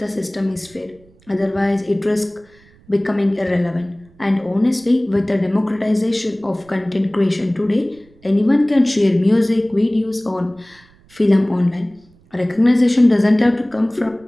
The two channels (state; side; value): noise; right; rumble, 29 dB below the sound